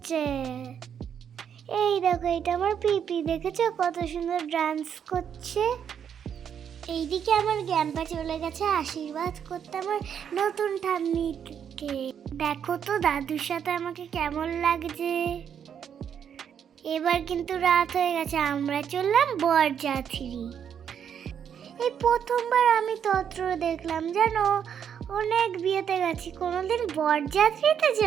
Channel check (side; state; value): left; quieter; 8.2 dB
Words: এই দেখো, এটা আমার পিপি, দেখেছো কত সুন্দর ডান্স করছে। এইদিকে আমার গ্যাম্পা চলে গেছে আশীর্বাদ করতে আমার নতুন ঠাম্মিকে। দেখো তো দাদুর সাথে আমাকে কেমন লাগছে। এবার কিন্তু রাত হয়ে গেছে, আমরা চললাম বরযাত্রী। এই প্রথমবার আমি তত্র দেখলাম, জানো, অনেক বিয়েতে গেছি, কোনোদিন বরযাত্রীতে